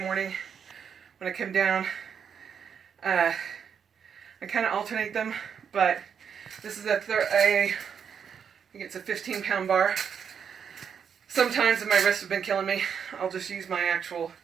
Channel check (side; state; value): left; quieter; 7.3 dB